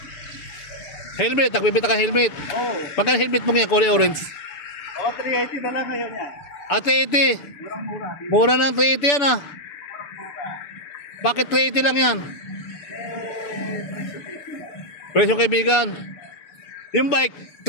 Helmet, nagbibinta ka helmet. Oo. Pagka helmet mo ngayon, kulay orange. 380 na lang ngayon yan. 380. Murang-mura. Mura ng 380 yan, Murang-mura. Bakit 380 lang yan? Presyo kaibigan. Yung bike,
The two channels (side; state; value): right; late; 6.9 ms